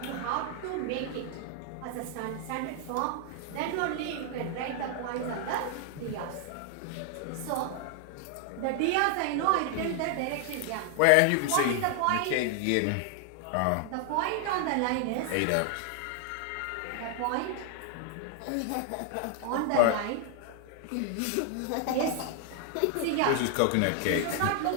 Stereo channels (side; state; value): both; different; correlation 0.00